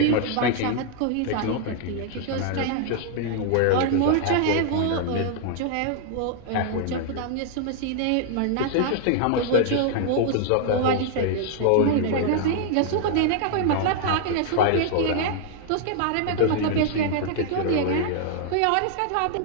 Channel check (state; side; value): different; both; correlation 0.00